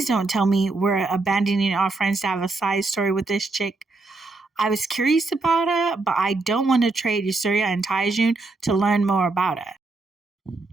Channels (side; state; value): left; quieter; 3.5 dB